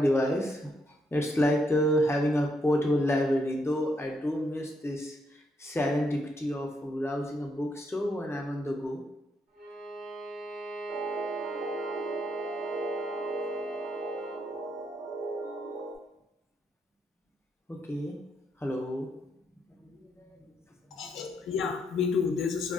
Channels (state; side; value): normal; both; correlation 0.77